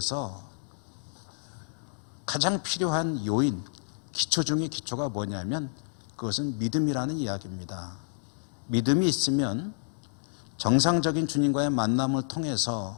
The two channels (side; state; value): right; silent; digital silence